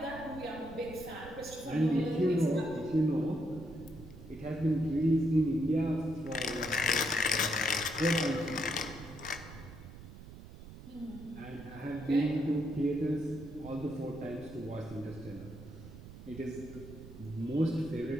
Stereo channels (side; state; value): right; noise; rumble, 15 dB below the sound